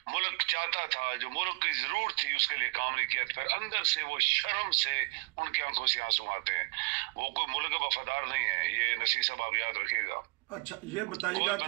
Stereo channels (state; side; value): quieter; left; 27.9 dB